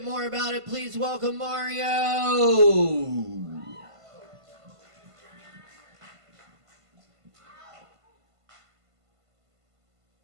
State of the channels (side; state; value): left; late; 1.5 ms